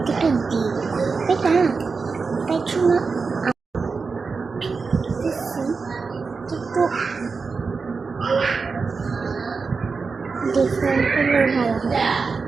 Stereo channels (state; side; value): quieter; left; 4.7 dB